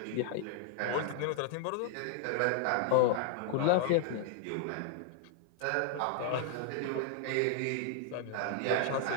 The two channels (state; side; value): different; both; correlation -0.01